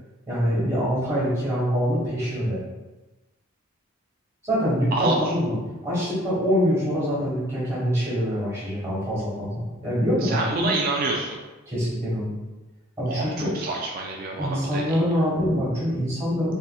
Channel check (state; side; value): normal; both; correlation 0.59